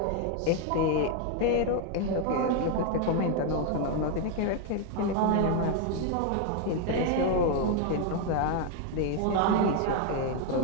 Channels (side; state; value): both; different; correlation 0.01